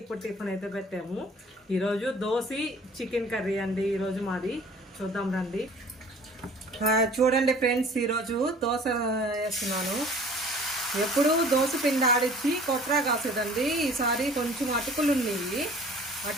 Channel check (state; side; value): normal; both; correlation 0.49